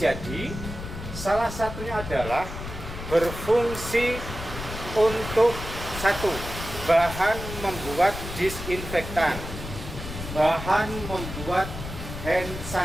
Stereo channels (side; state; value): left; noise; rumble, 9 dB below the sound